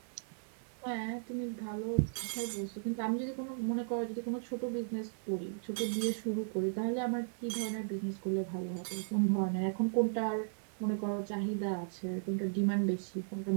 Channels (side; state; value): left; silent; 54 dB below the other